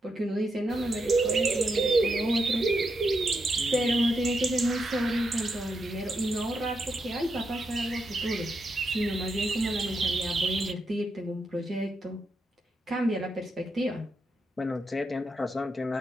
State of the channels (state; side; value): normal; both; correlation 0.83